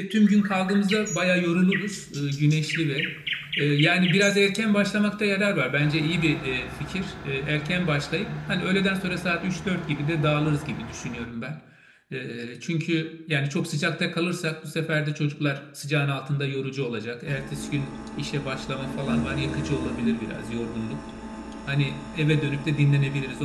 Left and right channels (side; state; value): both; identical; correlation 1.00